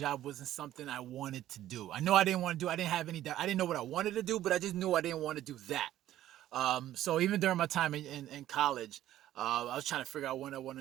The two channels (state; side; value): quieter; left; 13.1 dB